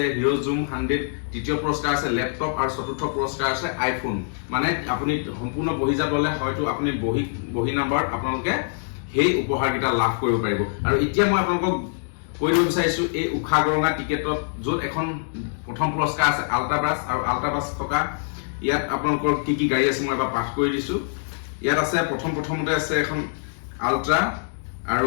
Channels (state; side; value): silent; right; digital silence